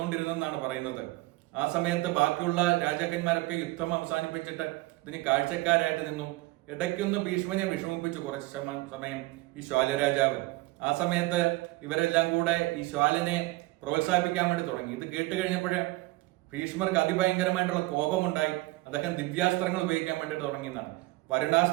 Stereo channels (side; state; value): left; quieter; 20.6 dB